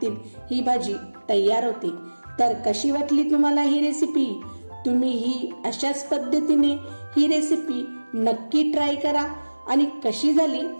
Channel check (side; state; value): both; inverted; correlation -1.00